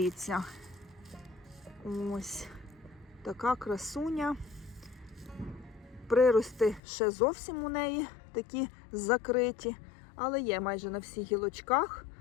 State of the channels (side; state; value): right; drops out; at 6.8 s